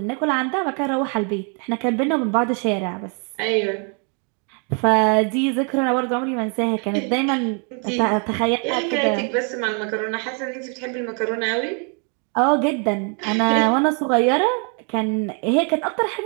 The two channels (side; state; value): left; quieter; 38.6 dB